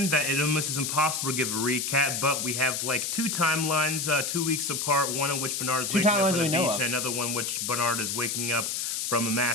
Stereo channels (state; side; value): noise; left; hiss, 2 dB below the sound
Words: that it almost is impossible to give a recap, but we have like two timelines, 2 weeks apart, one in which Bernard is waking up on the beach, and another one which Bernard is waking up from a